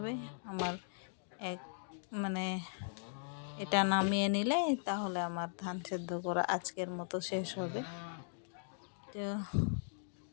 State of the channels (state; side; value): silent; right; digital silence